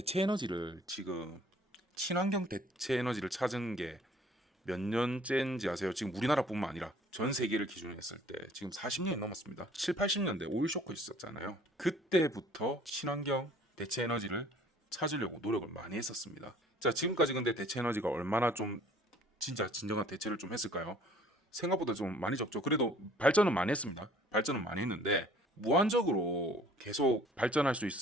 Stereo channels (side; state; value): both; normal; correlation 0.54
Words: 에너지를 지금 친환경 대체 에너지를 찾은 게 몇 년째인지 아세요? 지금 우리나라뿐만 아니라 전 세계를 기준으로 했을 때 지금 40년이 넘었습니다. 7, 80년대 오일 쇼크 있었잖아요. 그때부터 친환경 대체 에너지를 찾으려고 노력을 많이 했었습니다. 자, 지금까지 근데 대체 에너지가 얼마나 좀 진짜 진정한 대체를 좀 했을까요? 생각보다 좀 많이 적죠. 그래도 발전은 많이 했습니다. 발전은 많이 했는데 무한적으로 계속 발전할 수